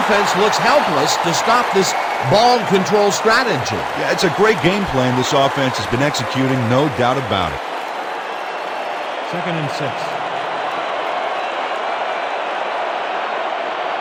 looks helpless to stop this ball control strategy. Yeah, it's a great game plan this offense has been executing, no doubt about it. 2nd and 6.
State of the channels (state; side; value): identical; both; correlation 1.00